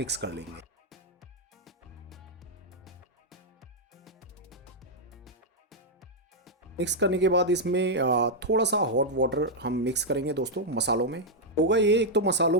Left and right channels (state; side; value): normal; both; correlation -0.04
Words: कर लेंगे। मिक्स करने के बाद इसमें थोड़ा सा हॉट वाटर हम मिक्स करेंगे दोस्तों मसालों में। होगा ये, एक तो मसालों